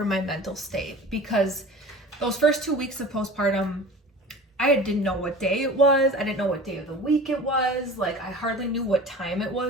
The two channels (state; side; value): normal; both; correlation 0.38